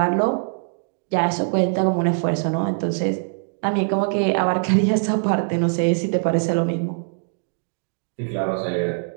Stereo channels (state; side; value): silent; left; digital silence